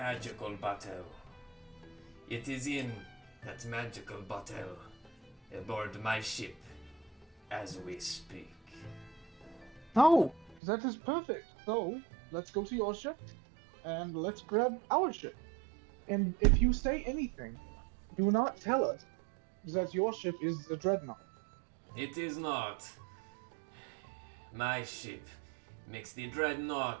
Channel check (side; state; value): left; drops out; at 10.6 s